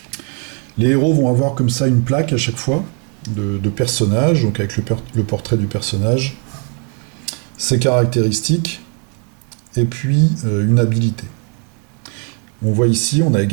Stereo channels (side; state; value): left; quieter; 40.0 dB